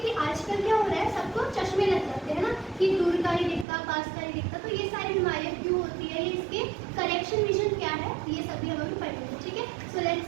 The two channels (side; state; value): left; drops out; at 3.7 s